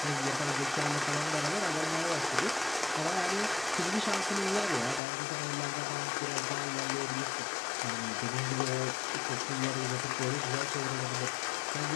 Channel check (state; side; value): drops out; right; at 5.0 s